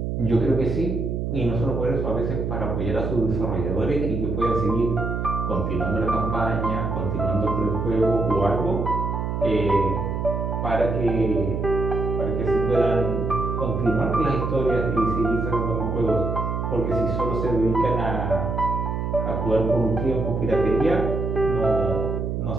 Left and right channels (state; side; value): noise; right; hum, 2 dB below the sound